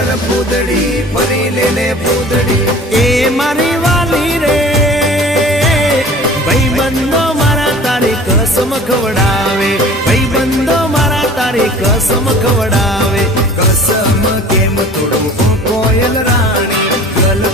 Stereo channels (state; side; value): normal; both; correlation 0.45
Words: પૂતળી ફરી લેને પૂતળી। એ મારી વાલી રે ભાઈબંધો મારા તારી કસમ ખવડાવે, ભાઈબંધો મારા તારી કસમ ખવડાવે। કસમ કેમ તોડું હો કોયલ રાણી,